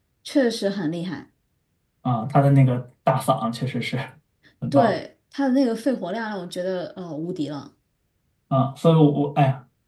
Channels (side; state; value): both; identical; correlation 1.00